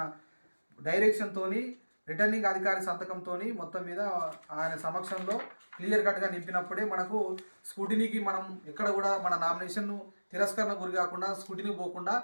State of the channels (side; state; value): both; inverted; correlation -1.00